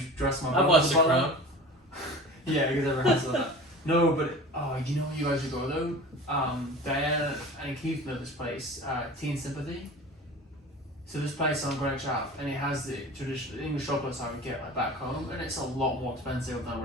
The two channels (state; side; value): normal; both; correlation 0.37